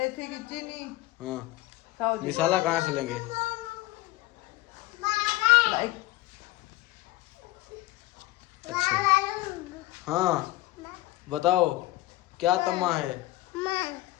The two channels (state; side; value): quieter; right; 18.0 dB